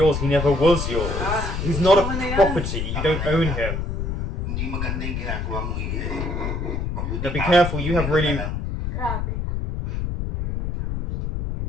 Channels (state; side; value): noise; left; rumble, 2 dB below the sound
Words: he never was yours. He's not a property, you don't own him. Hindi maganda yung ginagawa mo, Mabuti Now be pa, careful, you have really... Grabe.